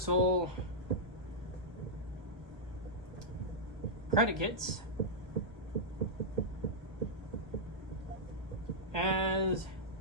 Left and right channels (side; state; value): left; late; 1.2 ms